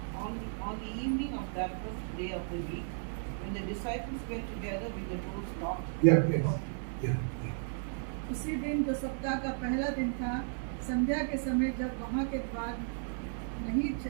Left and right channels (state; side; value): silent; left; 55 dB below the other